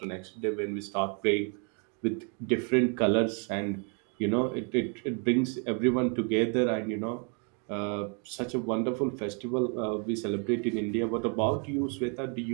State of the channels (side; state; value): left; quieter; 38.4 dB